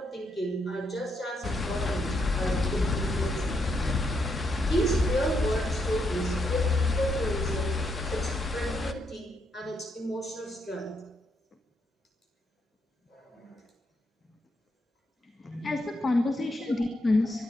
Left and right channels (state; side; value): normal; both; correlation 0.78